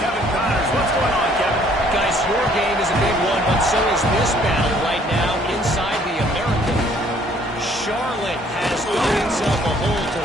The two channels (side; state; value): both; normal; correlation 0.61